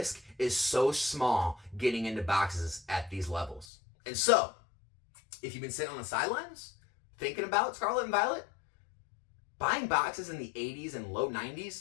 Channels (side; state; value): right; drops out; at 3.7 s